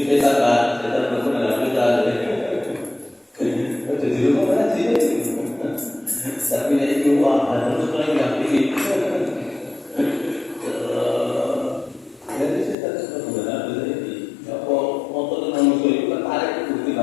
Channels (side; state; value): right; drops out; at 12.8 s